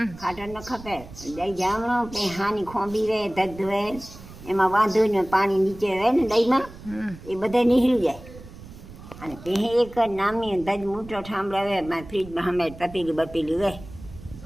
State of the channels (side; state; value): right; noise; rumble, 17 dB below the sound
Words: ખાટર ન ખપે. દહીં જામણો કંઈ હાની ખોંબી રહે ધધ રહે એમાં વાંધો ને પાણી નીચે રહે ને દહીંમાં એ બધા નીકળી જાય. અને પહે એક નામની ધજ મૂઠો ઠામડાવે ફ્રીજમાં સામે તપેલી બપેલી રહે